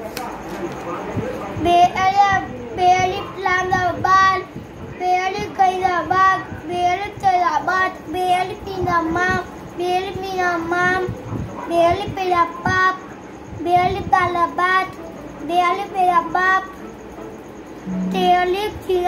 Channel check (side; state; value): both; identical; correlation 1.00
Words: बेअली इस्लामाबाद, बेअली कैदाबाद, बेअली तैराबाद, बेअली पीनामा, बेअली मीनामाम, बेअली पेरापाप, बेअली तालाबाद, बेअली पेराबाप, तेअली